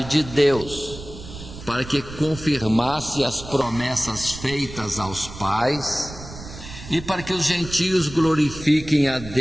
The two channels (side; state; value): right; noise; rumble, 13 dB below the sound